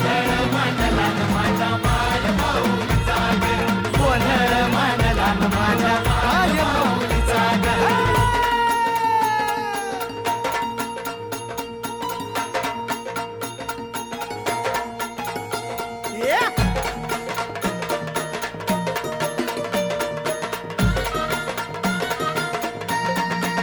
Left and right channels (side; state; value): both; identical; correlation 1.00